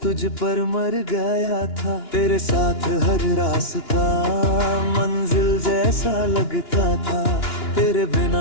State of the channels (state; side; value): late; right; 2.9 ms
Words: तुझ पर मर गया था। तेरे साथ हर रास्ता मंजिल जैसा लगता था, तेरे